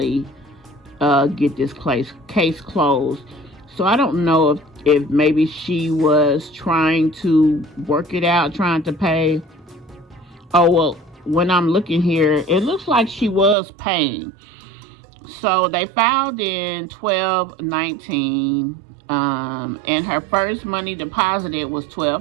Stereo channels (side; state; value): left; drops out; at 13.6 s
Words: get this case closed. So I don't know if maybe she was trying to work it out, trying to pay. Oh, well, when I'm looking here, it looks like she was paying. So they filed in 12/19, and her first money deposited was